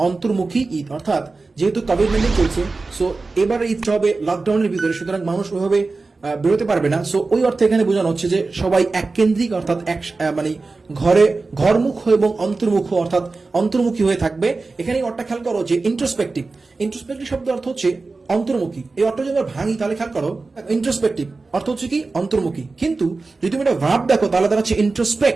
অন্তর্মুখী ঈদ। অর্থাৎ যেহেতু কোভিড-19 চলছে, সো এবারে ঈদটা হবে লকডাউনের ভিতরে, সুতরাং মানুষ ওইভাবে বেরোতে পারবে না। সো ওই অর্থে এখানে বোঝানো হচ্ছে যে সবাই এককেন্দ্রিক অর্থাৎ মানে ঘরমুখ এবং অন্তর্মুখ অর্থাৎ অন্তর্মুখী হয়ে থাকবে। এখানে অর্থটা খেয়াল করো যে ইন্ট্রোস্পেক্টিভ শব্দ অর্থ হচ্ছে অন্তর্মুখী। এই অর্থ যদি আমরা ভাঙি তাহলে খেয়াল করো ইন্ট্রোস্পেক্টিভ অর্থ হচ্ছে কি অন্তর্মুখী, কিন্তু যদি তুমি এটা ভার্ব দেখো তাহলে তারা হচ্ছে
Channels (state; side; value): quieter; left; 3.8 dB